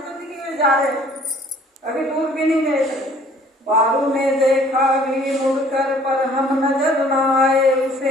तो दिख में जा रहे हो, अभी दूर भी नहीं गए थे। बारू ने देखा भी मुड़कर पर हम नजर न आए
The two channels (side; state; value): both; normal; correlation 0.55